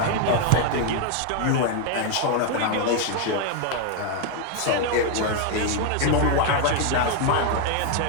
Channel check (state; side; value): different; both; correlation 0.01